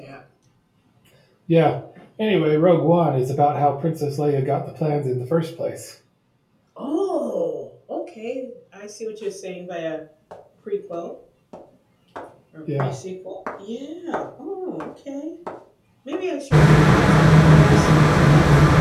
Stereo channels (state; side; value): identical; both; correlation 1.00